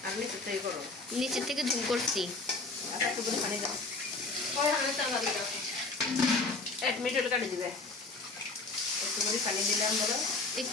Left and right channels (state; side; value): quieter; right; 3.5 dB